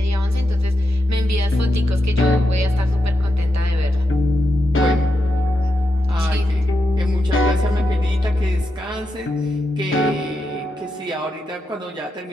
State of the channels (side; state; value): both; normal; correlation 0.86